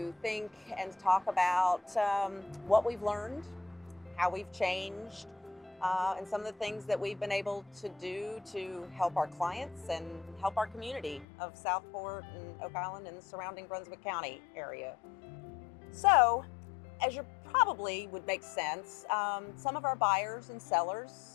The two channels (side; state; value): right; drops out; at 11.2 s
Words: think and talk about what we've learned, how we've changed, and some of the things that we've been able to do to help our clients and help our community of Southport and Oak Island and the surrounding Brunswick County area. So, as you probably would make sense, some of our buyers and